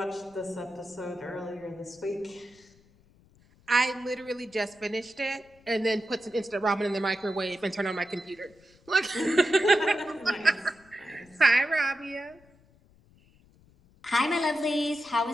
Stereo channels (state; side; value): noise; left; rumble, 29 dB below the sound